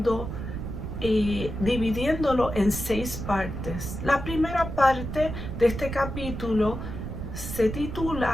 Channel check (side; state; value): right; noise; rumble, 6 dB below the sound